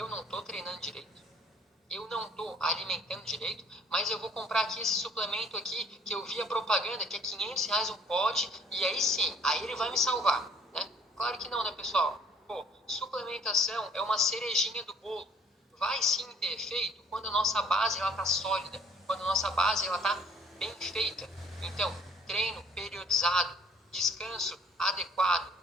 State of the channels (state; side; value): normal; both; correlation 0.57